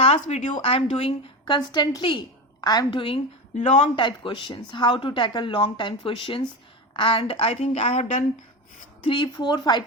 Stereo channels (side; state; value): both; normal; correlation 0.22